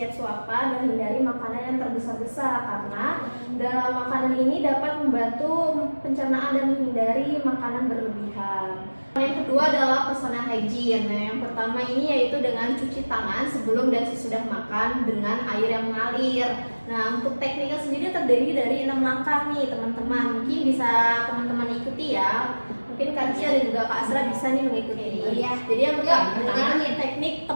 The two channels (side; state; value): both; inverted; correlation -1.00